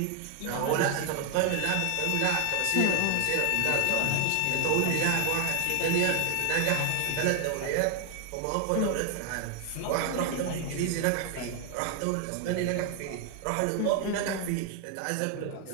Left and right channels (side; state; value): both; different; correlation 0.00